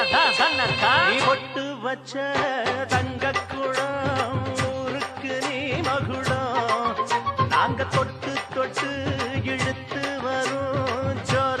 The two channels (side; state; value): both; identical; correlation 1.00